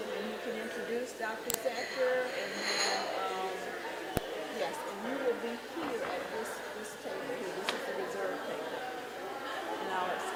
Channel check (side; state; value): both; identical; correlation 1.00